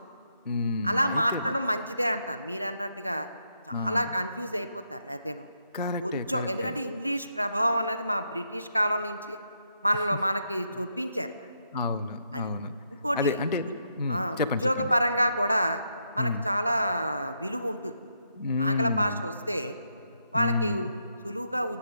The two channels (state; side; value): inverted; both; correlation -0.79